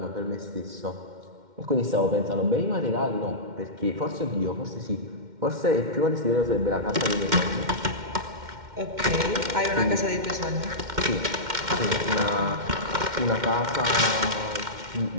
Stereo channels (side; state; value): left; late; 2.1 ms